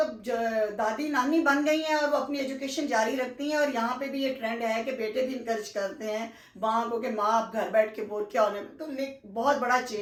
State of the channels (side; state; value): both; identical; correlation 1.00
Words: دادی نانی بن گئی ہیں اور وہ اپنی ایجوکیشن جاری رکھتی ہیں. اور یہاں پہ بھی یہ ٹرینڈ ہے کہ بیٹے بھی انکریج کرتے ہیں ماں کو کہ ماں آپ گھر بیٹھ کے بور کیا ہونے. تو بہت بڑا